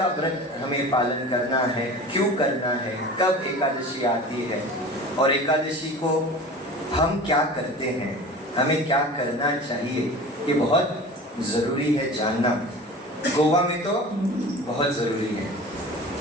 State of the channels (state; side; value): normal; both; correlation 0.37